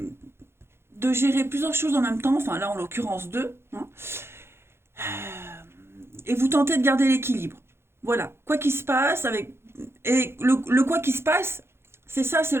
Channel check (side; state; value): left; late; 0.12 ms